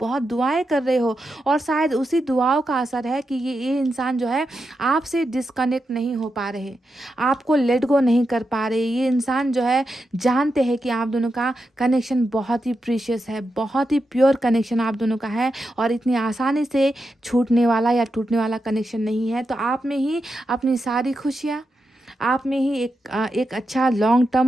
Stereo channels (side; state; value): both; normal; correlation 0.87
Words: बहुत दुआएं कर रहे हो, और शायद उसी दुआओं का असर है कि ये इंसान जो है आपसे डिस्कनेक्ट नहीं हो पा रहे, आपको लेट गो नहीं कर पा रहे। ये इंसान जो है जानते हैं कि आप दोनों का कनेक्शन बहुत ही प्रीशियस है, बहुत ही प्योर कनेक्शन आप दोनों का है, और इतनी आसानी से छूटने वाला या टूटने वाला कनेक्शन नहीं है। तो आप में ही अपनी सारी खुशियाँ, आप में ही एक अच्छा लॉन्ग